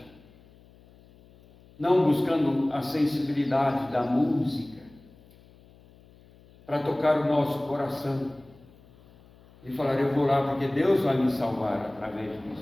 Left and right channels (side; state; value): left; noise; hum, 26 dB below the sound